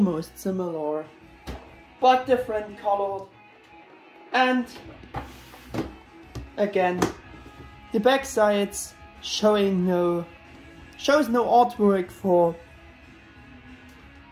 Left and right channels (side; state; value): both; identical; correlation 1.00